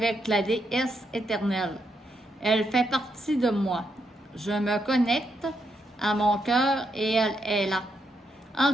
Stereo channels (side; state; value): both; normal; correlation 0.80